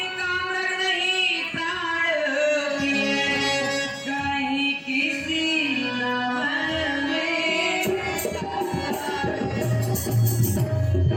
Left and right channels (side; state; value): both; identical; correlation 1.00